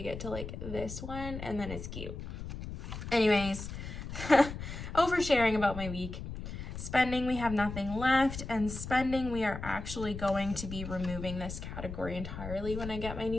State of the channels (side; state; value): left; noise; rumble, 8 dB below the sound